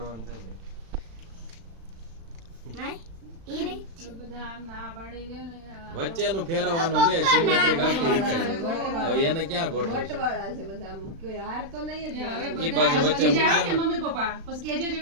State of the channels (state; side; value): late; left; 36 ms